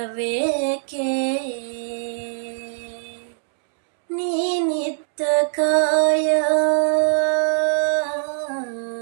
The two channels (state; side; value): silent; left; 61 dB below the other